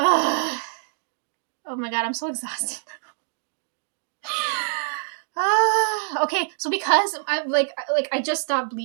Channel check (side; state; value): left; silent; digital silence